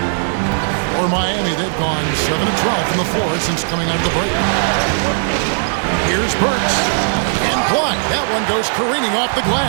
For Miami, they've gone 7 of 12 from the floor since coming out of the break. Here's Burks. And blocked. That one goes careening off the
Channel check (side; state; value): left; silent; 66 dB below the other